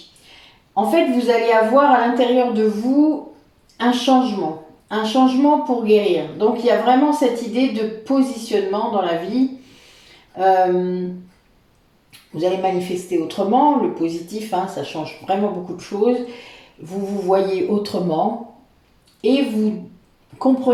En fait, vous allez avoir à l'intérieur de vous un changement pour guérir. Donc, il y a vraiment cette idée de positionnement dans la vie. Vous allez manifester autrement, le positif, hein, ça change vraiment beaucoup de choses. Vous vous voyez autrement et vous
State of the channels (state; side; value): identical; both; correlation 1.00